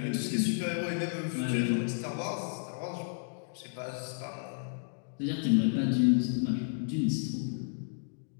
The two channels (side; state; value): right; silent; digital silence